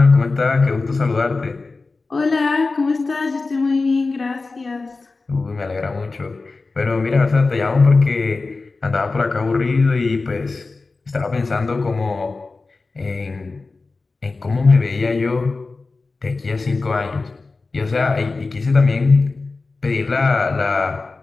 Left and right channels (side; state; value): right; quieter; 3.8 dB